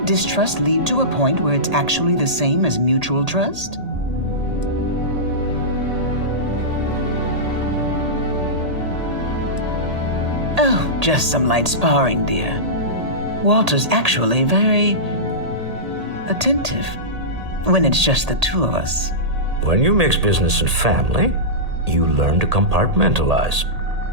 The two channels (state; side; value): late; left; 1.8 ms